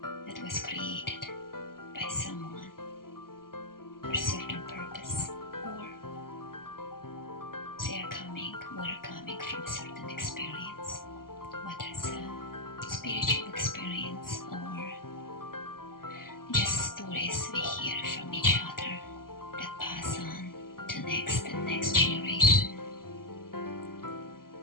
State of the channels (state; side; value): late; right; 0.92 ms